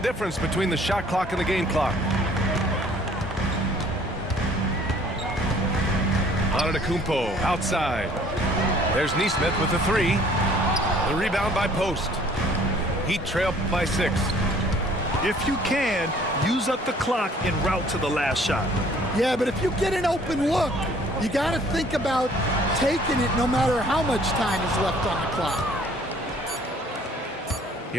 difference between the shot clock and the game clock. Antetokounmpo outside. There's Nesmith with the 3. The rebound by Post. Heat trail by 6. If you can, use up the clock en route to the last shot. Yeah, but if you get an open look, you got to think about taking it no matter how much time is left on the clock.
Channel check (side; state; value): both; normal; correlation 0.56